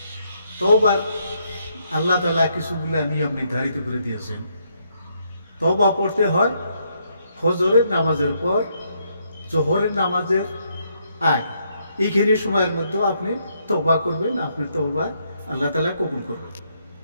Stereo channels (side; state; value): both; inverted; correlation -0.75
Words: তওবার আল্লাহ তাআলা কিছুগুলা নিয়ম নির্ধারিত করে দিয়েছেন। তওবা পড়তে হয় ফজরের নামাজের পর, জোহরের নামাজের আগে। এইখানে সময়ের মধ্যে আপনি তওবা করবেন, আপনার তওবা আল্লাহ তাআলা কবুল করবেন।